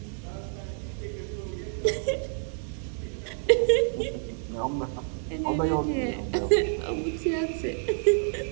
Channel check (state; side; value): silent; left; 59 dB below the other